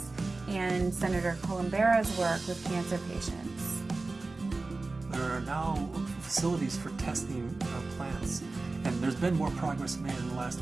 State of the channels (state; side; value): quieter; left; 3.5 dB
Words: and Senator Columbera's work with cancer patients. There are now facilities for testing plants, and there's been more progress made in the last